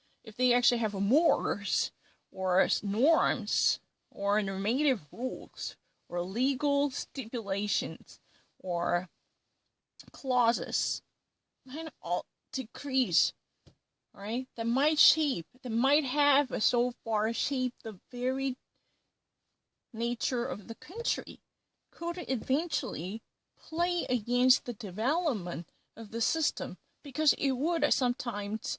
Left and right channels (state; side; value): identical; both; correlation 1.00